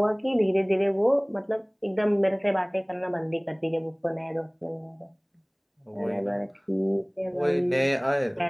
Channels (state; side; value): identical; both; correlation 1.00